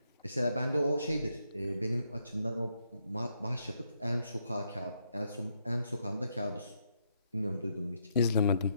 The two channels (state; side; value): inverted; both; correlation -0.77